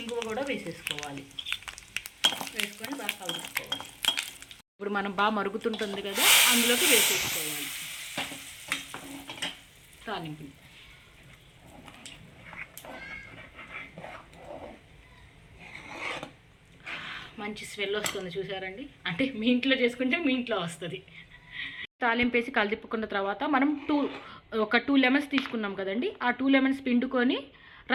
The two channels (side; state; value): both; identical; correlation 1.00